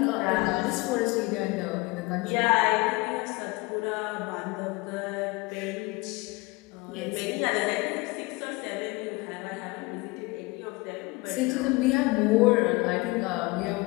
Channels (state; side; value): quieter; right; 24.3 dB